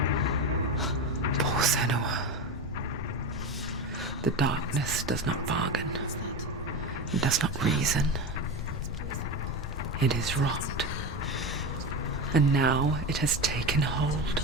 Poor Senua. The darkness does not bargain. It does not reason. It is rot. And now it has taken hold.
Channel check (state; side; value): normal; both; correlation 0.22